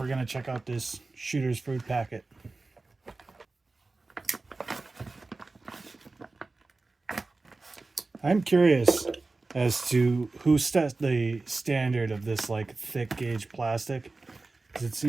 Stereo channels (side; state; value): left; quieter; 3.5 dB